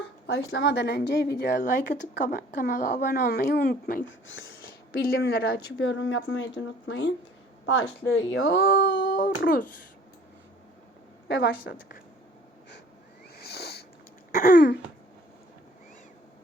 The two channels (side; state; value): both; normal; correlation 0.53